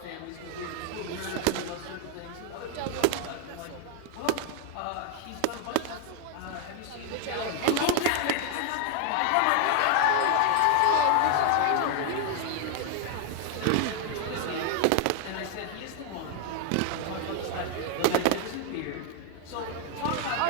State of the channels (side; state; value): both; different; correlation 0.00